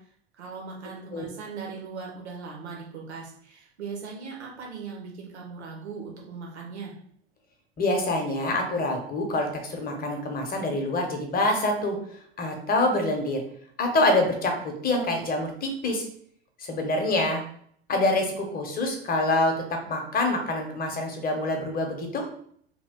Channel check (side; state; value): both; normal; correlation 0.15